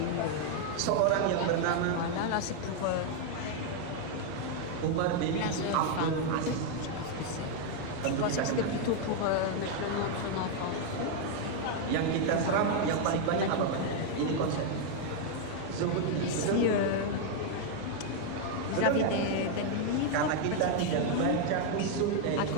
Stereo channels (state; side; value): different; both; correlation 0.01